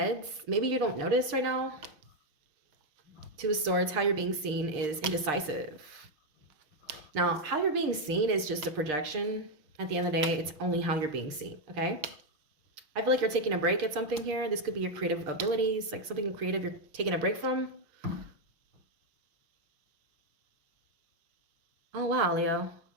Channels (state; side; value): late; left; 6.6 ms